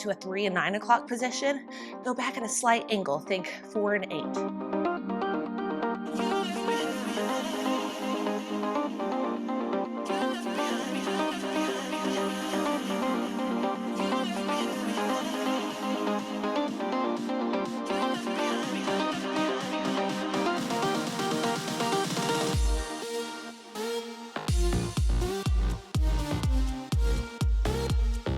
to a 3 and 9 o'clock position, go back at a slight angle. Think 4 and 8.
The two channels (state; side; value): identical; both; correlation 1.00